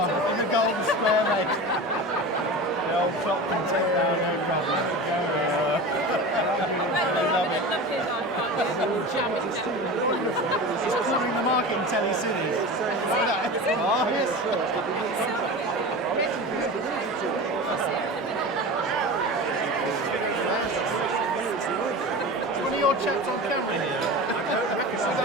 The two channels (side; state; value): both; normal; correlation 0.30